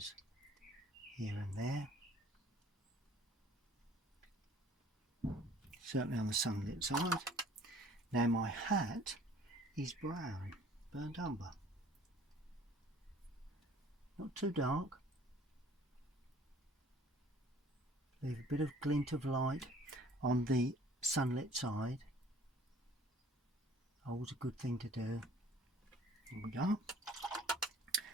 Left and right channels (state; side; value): normal; both; correlation 0.53